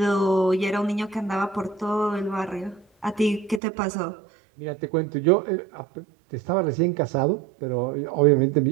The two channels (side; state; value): left; drops out; at 3.6 s